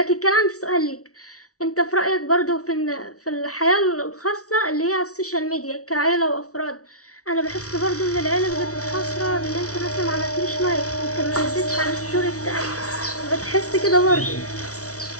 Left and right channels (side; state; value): right; late; 0.65 ms